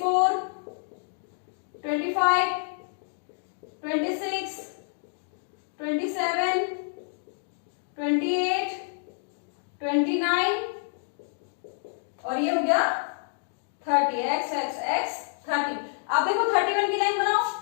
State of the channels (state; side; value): silent; right; digital silence